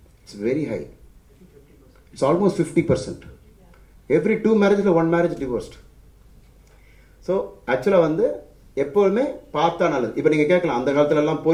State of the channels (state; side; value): identical; both; correlation 1.00